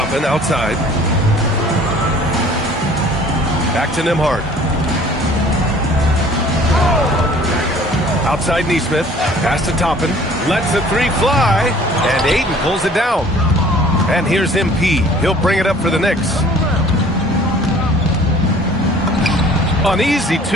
outside. Back to Nembhard. Outside Neesmith, pass to Toppin, lets the three fly, and Ayton pulls it down. And here's MP. He'll bring it up for the Knicks. An easy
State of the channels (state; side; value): normal; both; correlation 0.52